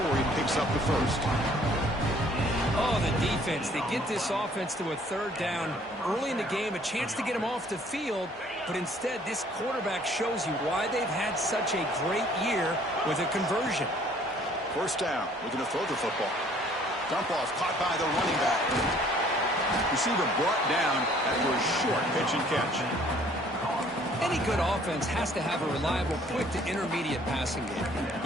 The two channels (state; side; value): normal; both; correlation 0.58